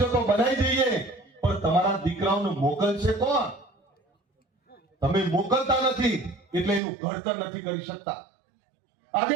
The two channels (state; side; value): drops out; left; at 6.8 s